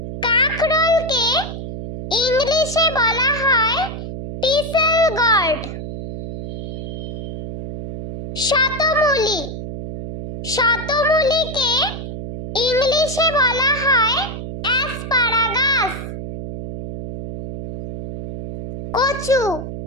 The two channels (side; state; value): right; noise; hum, 8 dB below the sound